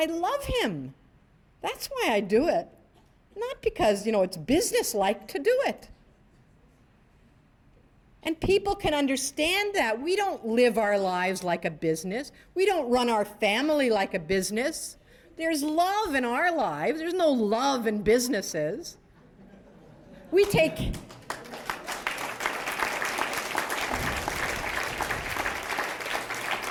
love him. That's why I do it. Not because, you know, it's business-like to do it. And people can understand that. We don't live our lives like a business. We don't run our family like a business. There's love in our lives. There's no love in businesses. We take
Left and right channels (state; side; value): identical; both; correlation 1.00